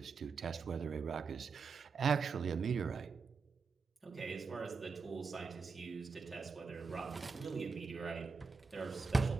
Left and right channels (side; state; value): left; quieter; 4.9 dB